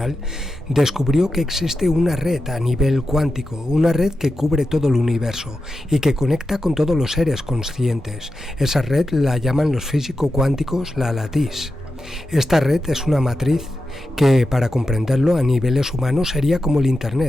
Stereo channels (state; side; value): normal; both; correlation 0.90